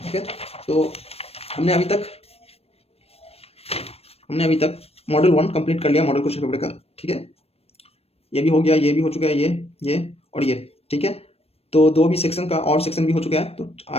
ठीक है। तो हमने अभी तक मॉडल 1 कंप्लीट कर लिया, मॉडल क्वेश्चन पेपर का, ठीक है। ये भी हो गया, ये भी हो चुका है, ये और ये, ठीक है। तो 2 भी सेक्शन का और सेक्शन भी हो चुका है। तो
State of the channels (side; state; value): right; late; 0.29 ms